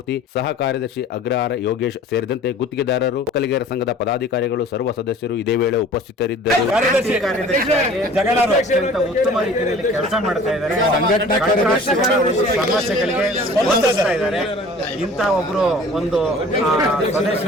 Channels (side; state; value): both; normal; correlation 0.47